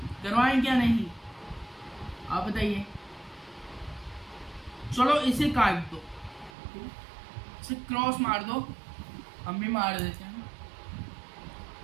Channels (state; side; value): drops out; left; at 6.5 s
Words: करवाएं क्या नहीं, आप बताइए। चलो इसे काट दो, इसे क्रॉस मार दो, हम भी मार देते हैं,